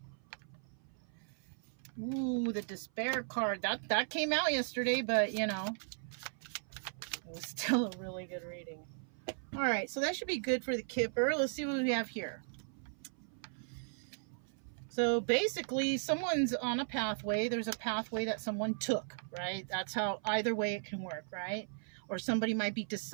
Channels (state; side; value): silent; left; 53 dB below the other